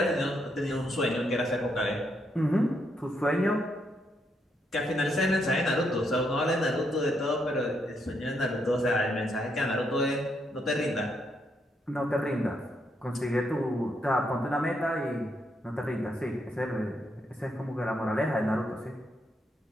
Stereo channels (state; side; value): normal; both; correlation 0.77